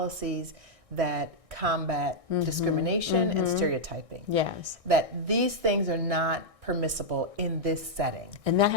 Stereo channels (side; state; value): left; late; 1.6 ms